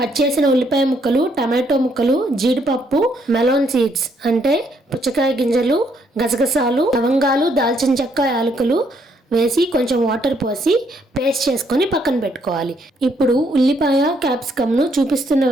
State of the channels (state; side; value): normal; both; correlation 0.71